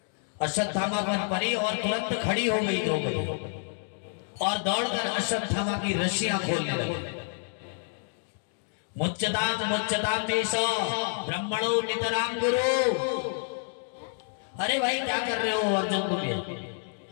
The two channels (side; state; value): right; silent; 59 dB below the other